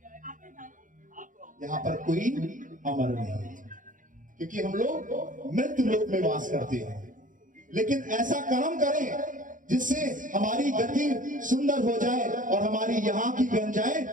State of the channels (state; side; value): late; left; 0.38 ms